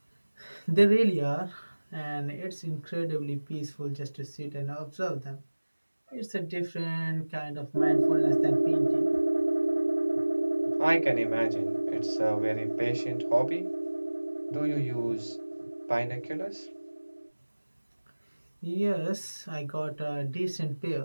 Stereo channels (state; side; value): inverted; both; correlation -1.00